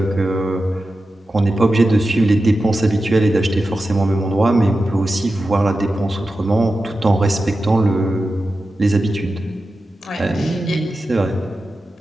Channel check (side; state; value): both; normal; correlation 0.92